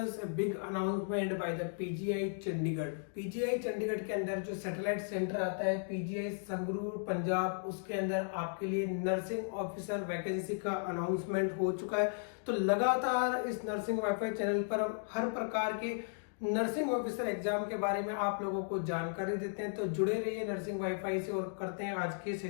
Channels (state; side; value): silent; right; digital silence